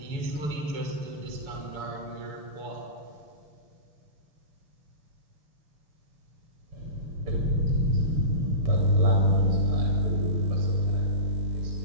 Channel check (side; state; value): left; late; 6.9 ms